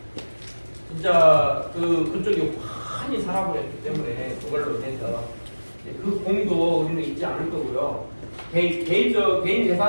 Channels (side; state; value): both; inverted; correlation -1.00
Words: 진짜 그쪽이 환히 살아버렸기 때문에 그걸로 인해서 그 공도 우리는 잊지 않을 거고요. 개인